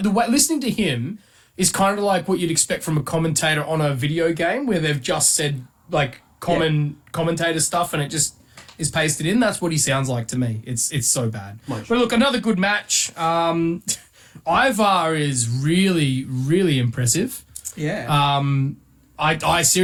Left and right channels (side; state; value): both; identical; correlation 1.00